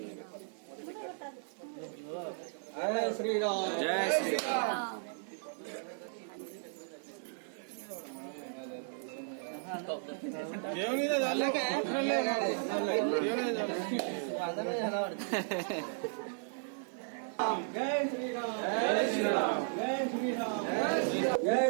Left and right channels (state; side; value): silent; left; 54 dB below the other